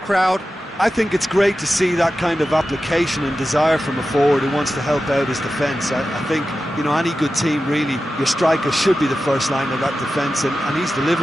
I think it's great to see that kind of application and desire from a forward who wants to help out his defence. I think, you know, any good team, really, your striker should be the first line of that defence, and he's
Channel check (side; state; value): both; normal; correlation 0.93